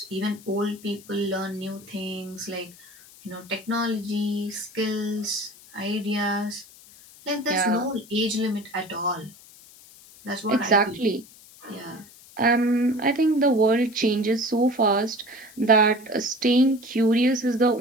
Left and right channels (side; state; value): left; noise; hiss, 22 dB below the sound